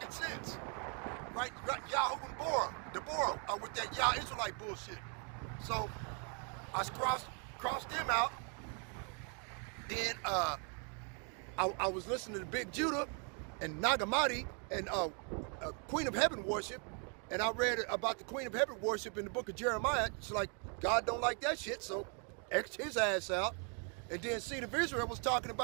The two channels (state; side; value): quieter; left; 38.6 dB